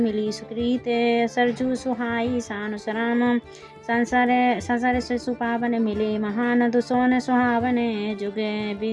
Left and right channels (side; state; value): both; identical; correlation 1.00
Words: सुकृत सरजू सुहाई सानुस राम संसार से सुपावन मिले महान दुसोन सुहावन जुग